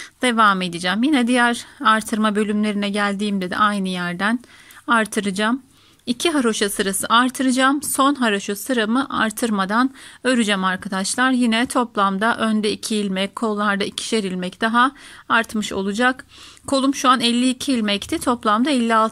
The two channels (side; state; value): both; identical; correlation 1.00